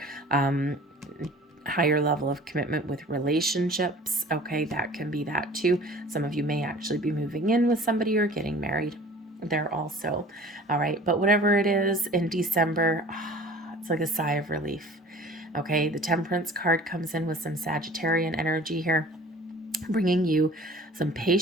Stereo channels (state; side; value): normal; both; correlation 0.46